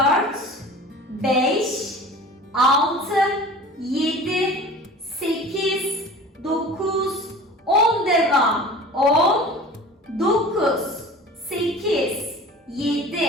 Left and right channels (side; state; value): both; normal; correlation 0.40